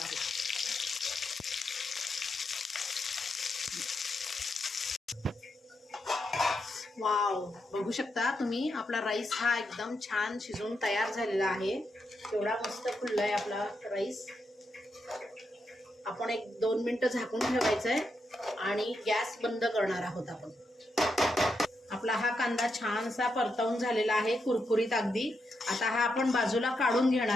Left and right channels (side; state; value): both; normal; correlation 0.83